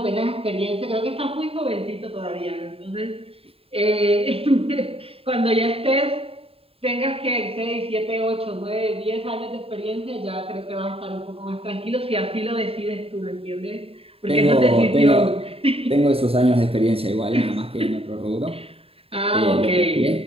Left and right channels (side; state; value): left; late; 0.27 ms